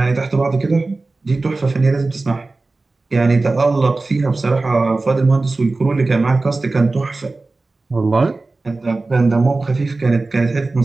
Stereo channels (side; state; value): left; quieter; 3.4 dB